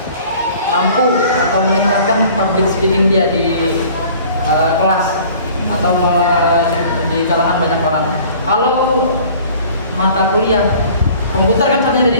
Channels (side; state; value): both; inverted; correlation -0.49